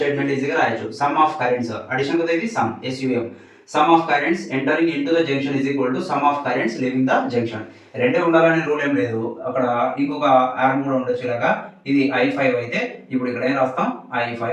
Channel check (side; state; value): both; identical; correlation 1.00